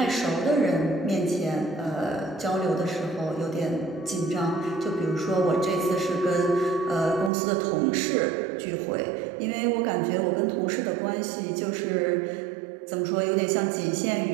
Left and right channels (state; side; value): drops out; left; at 7.3 s